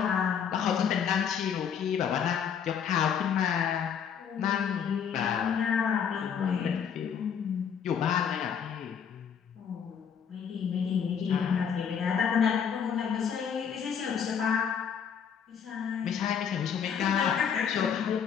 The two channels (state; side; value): quieter; right; 7.6 dB